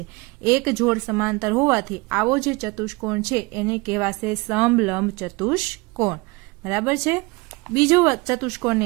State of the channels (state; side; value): quieter; left; 25.6 dB